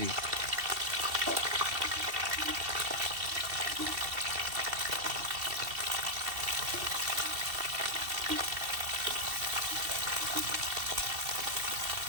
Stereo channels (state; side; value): late; left; 2.7 ms